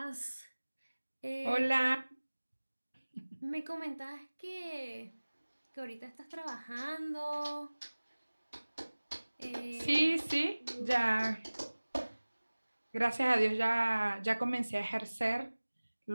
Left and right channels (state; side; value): inverted; both; correlation -1.00